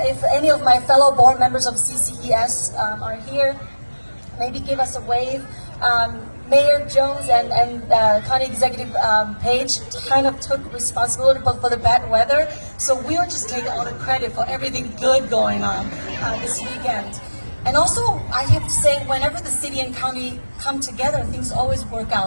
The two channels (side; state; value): both; inverted; correlation -1.00